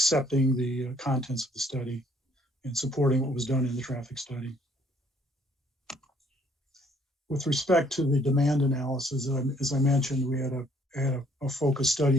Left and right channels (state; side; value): normal; both; correlation 0.63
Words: the contents of the study and supporting what was done in the traffic study. With respect to the demand analysis, as I mentioned, we had a focus